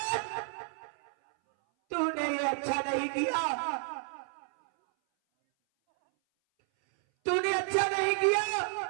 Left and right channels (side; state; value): left; silent; 57 dB below the other